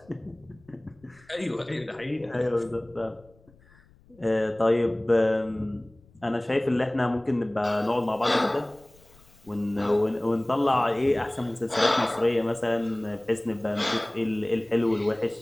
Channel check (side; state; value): left; noise; rumble, 28 dB below the sound